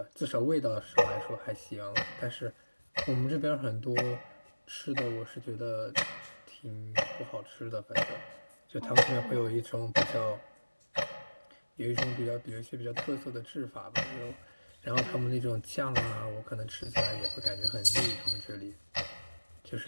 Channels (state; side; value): inverted; both; correlation -1.00